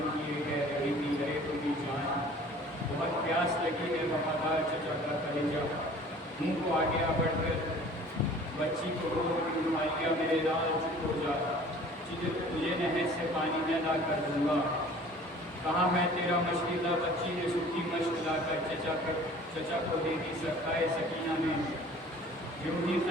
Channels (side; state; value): both; normal; correlation 0.48